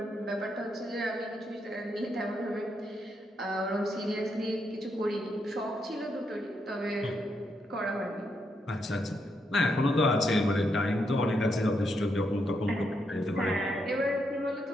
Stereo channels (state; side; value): normal; both; correlation 0.80